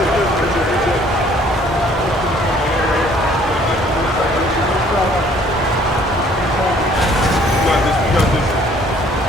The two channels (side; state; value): both; normal; correlation 0.58